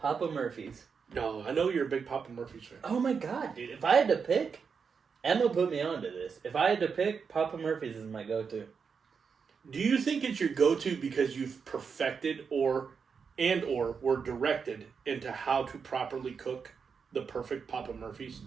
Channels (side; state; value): left; quieter; 5.9 dB